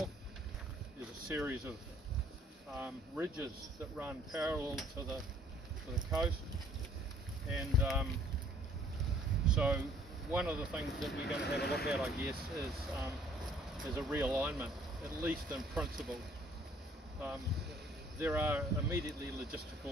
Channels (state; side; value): normal; both; correlation 0.60